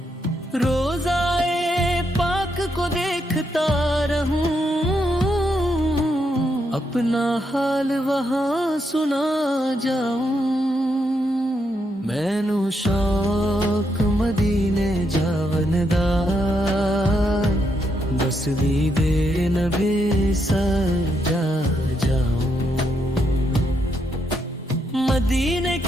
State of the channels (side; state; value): both; normal; correlation 0.79